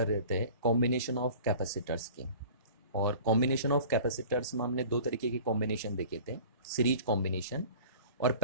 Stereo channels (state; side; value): inverted; both; correlation -0.42